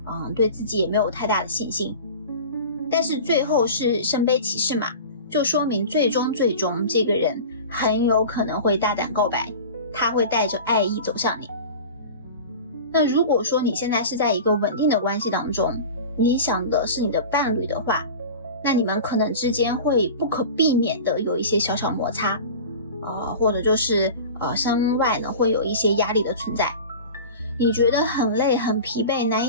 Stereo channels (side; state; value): both; inverted; correlation -0.35